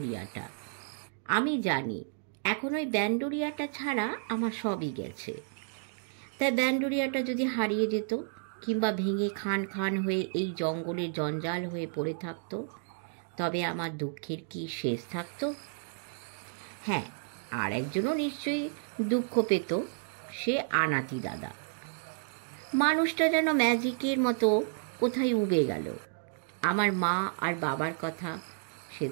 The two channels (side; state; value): left; silent; digital silence